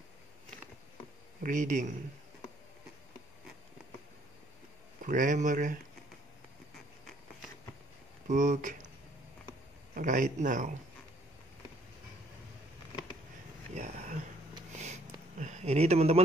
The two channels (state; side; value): normal; both; correlation 0.63